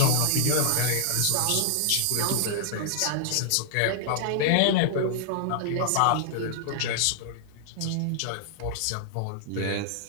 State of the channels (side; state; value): both; different; correlation -0.01